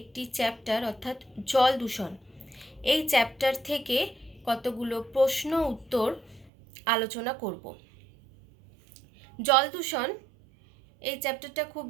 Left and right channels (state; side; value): drops out; left; at 6.5 s